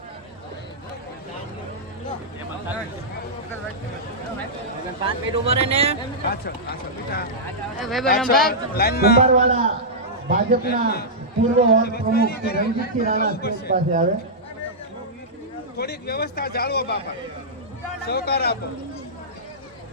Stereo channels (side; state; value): both; normal; correlation -0.12